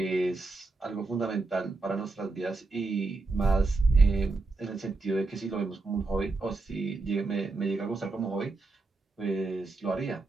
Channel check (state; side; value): quieter; left; 3.5 dB